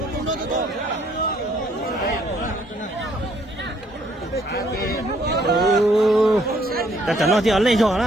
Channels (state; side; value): normal; both; correlation 0.66